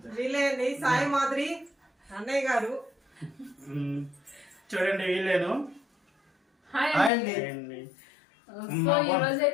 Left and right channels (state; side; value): drops out; right; at 7.1 s